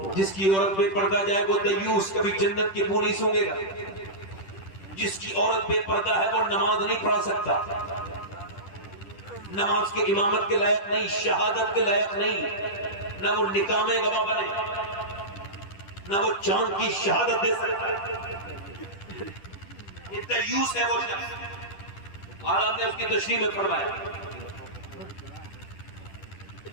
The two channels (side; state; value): right; late; 10 ms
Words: جس کی عورت بے پردہ جائے وہ دیوس، کبھی جنت کی بو نہیں سونگے گا۔ جس کی عورت بے پردہ ہے وہ نماز نہیں پڑھا سکتا، نماز کے امامت کے لائق نہیں، شہادت کے لائق نہیں، نہ وہ نکاح میں گواہ بنے، نہ وہ چاند کی شہادت دے سکتا۔ یہ دیوس ہے وہ شخص، عالم نے اس کی تشریح میں فرمایا۔